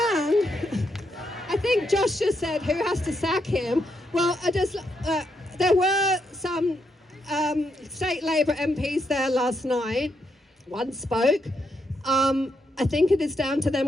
I think Josh just said, who has to sack him? Well, there were some state Labour MPs there last night. One spoke. I think it is down to them.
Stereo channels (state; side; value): normal; both; correlation 0.79